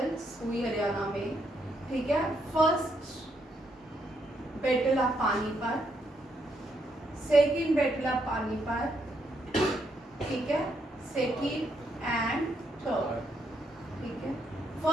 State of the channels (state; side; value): normal; both; correlation 0.76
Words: हुई हरियाणा में, ठीक है। First battle of Panipat, second battle of Panipat, ठीक है, सेकंड एंड थर्ड, ठीक है।